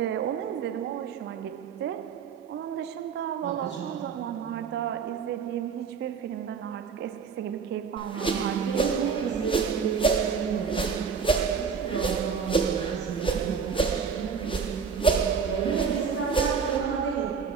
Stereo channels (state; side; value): quieter; left; 6.1 dB